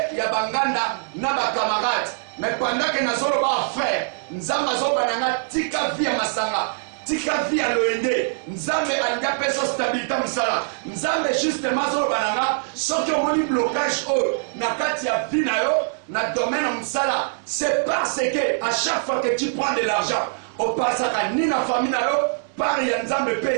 ya banganda na bakamarade mais pendant que nazolo ba frère nzamba zoba nanga tika via masanga tika via loyenge nzambe anga peso stabilité musala nzambe justement zoba nanga soki omoni blocage na kati ya vie na yo na domaine musala c'est parce que à chaque fois que tu prends de l'argent au pasaka ni na famille na yo par ya nzambe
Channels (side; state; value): left; silent; 63 dB below the other